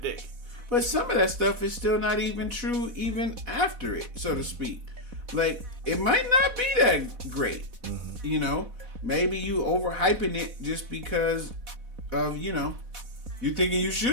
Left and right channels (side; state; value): left; late; 4.1 ms